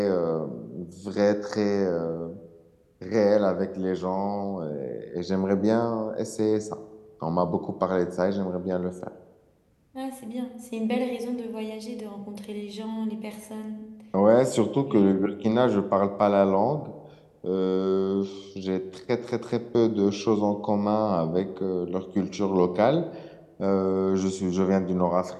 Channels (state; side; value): identical; both; correlation 1.00